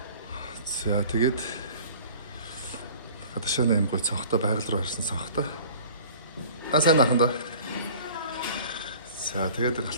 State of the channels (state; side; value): inverted; both; correlation -0.46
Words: За тэгээд гадашааны юм гой цонхтой байгаль руу харсан цонхтой. Сайн ахын даа. За тэгээд